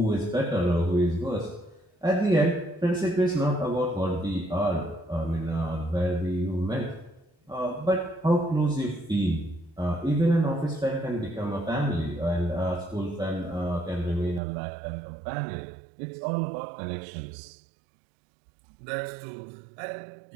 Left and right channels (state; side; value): drops out; left; at 14.4 s